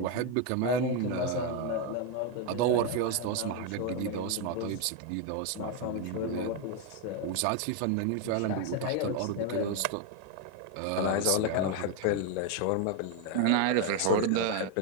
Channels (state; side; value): different; both; correlation 0.01